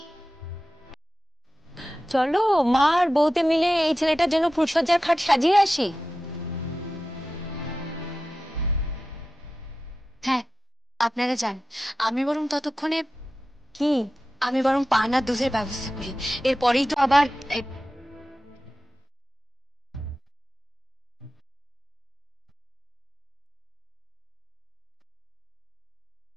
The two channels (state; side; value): normal; both; correlation 0.93